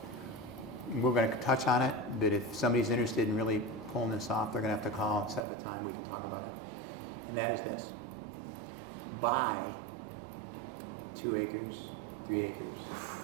We're going to touch on it, but if somebody's interested in really pulling this off, they're going to have to call and set up a time we can talk about it. And that is this: buy 2 acres, 3 acres,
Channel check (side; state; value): left; drops out; at 5.5 s